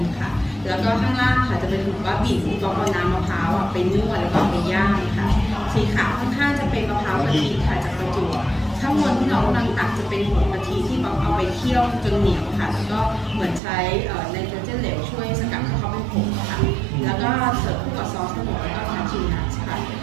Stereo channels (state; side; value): drops out; left; at 13.6 s